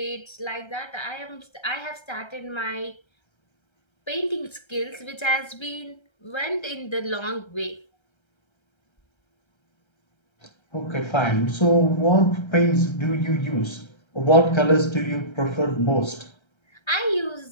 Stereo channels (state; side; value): late; right; 1.3 ms